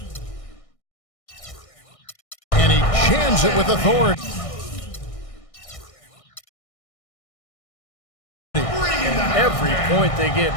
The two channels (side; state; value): right; late; 1.6 ms